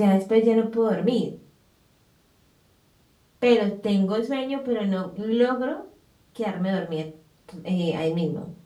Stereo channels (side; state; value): both; identical; correlation 1.00